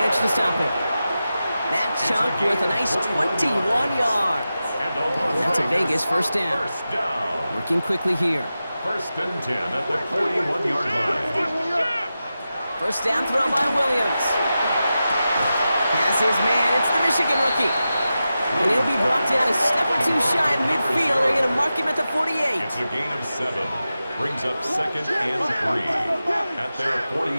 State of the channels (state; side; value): inverted; both; correlation -0.92